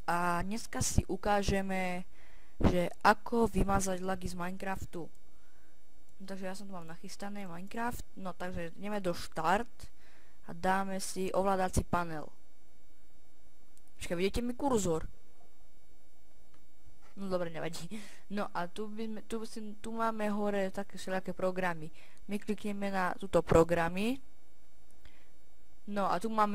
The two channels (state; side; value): identical; both; correlation 1.00